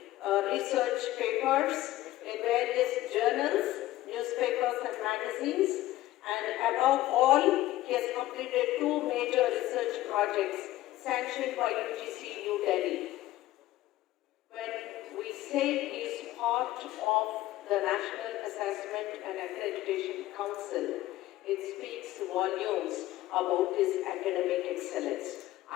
research papers in various journals, newspapers and magazines, and above all, he has completed 2 major research projects sanctioned by UGC New Delhi. When we say he is part of the National Assessment and Accreditation Council, it speaks volumes about his academic excellence.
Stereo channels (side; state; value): right; quieter; 15.8 dB